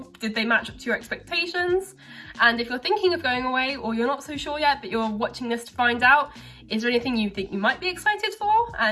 Did they match up to your expectations? And if you're thinking of going away or you're not so sure yet, but you're watching this to find out, is there anything you think you might be excited for?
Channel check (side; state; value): both; identical; correlation 1.00